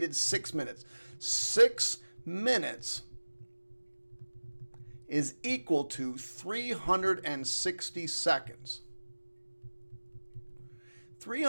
6 minutes. 6 minutes is equal to 360 seconds.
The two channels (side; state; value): both; inverted; correlation -1.00